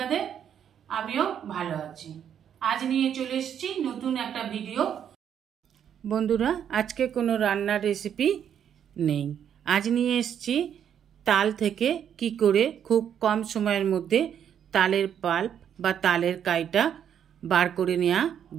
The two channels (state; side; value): quieter; left; 8.9 dB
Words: आमिओ भालो आछि। आज निये चले एसेछि नतुन एकटा भिडियो। बंधुरा आजके कोनो रान्नार रेसिपि नेই। आज निये एसेछि ताल थेके कि करे खूब कम समयेर मध्य तालेर पाल्प बा तालेर काइटा बार करे नेওয়া